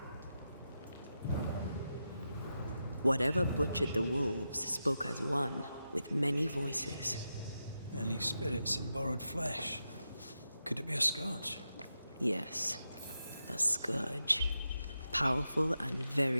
Whatever butchered the wolves spoke as one, with many voices. Any spirits in borrowed flesh? Could it be a scourge? Yes, a scourge. Powerful and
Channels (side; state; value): both; inverted; correlation -0.88